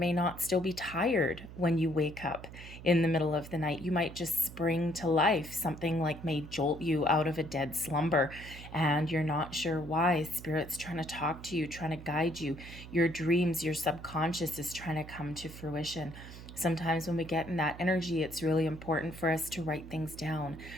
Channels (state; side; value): noise; right; hum, 14 dB below the sound